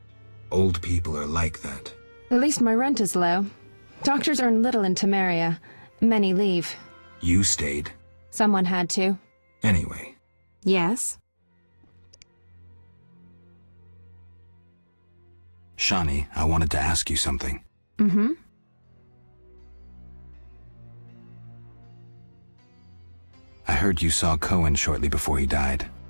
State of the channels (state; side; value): inverted; both; correlation -1.00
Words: Old people are like that. At least my rent is low. Doctors earn little in Temeria. Many leave. You stayed. Someone had to. Anyway, Yes? Shawnee, I wanted to ask you something. Mm-hmm. I heard you saw Cohen shortly before he died.